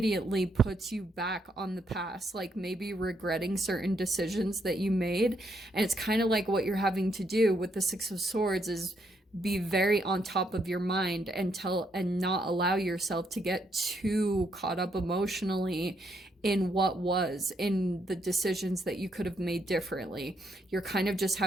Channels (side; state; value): both; normal; correlation 0.75